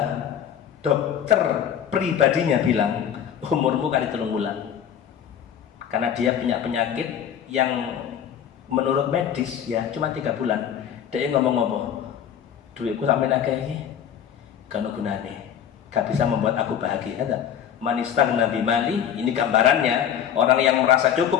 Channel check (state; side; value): quieter; right; 9.1 dB